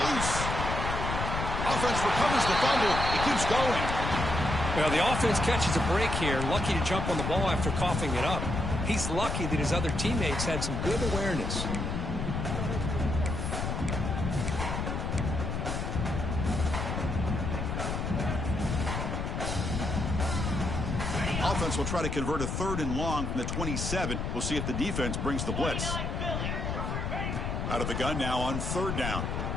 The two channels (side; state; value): left; noise; rumble, 2 dB below the sound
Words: loose. Offense recovers the fumble. He keeps going. Well, the offense catches a break here. Lucky to jump on the ball after coughing it up. He's lucky that his other teammates had some good awareness. Offense will try to convert a 3rd and long from the 27. We'll see if the defense brings the blitz. Out of the gun now on 3rd down.